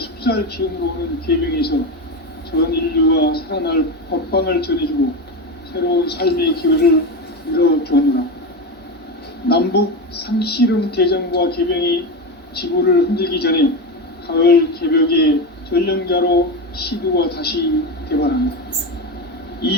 기운으로 오는 계병에서 전 태어날 법방을 전해주고 새로운 삶의 기회를 열어주느라. 남북 상씨름 대전과 개병이 지구를 흔들기 전에 가을 개벽의 전령자로 시두가 다시 대발합니다.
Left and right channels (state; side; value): normal; both; correlation 0.18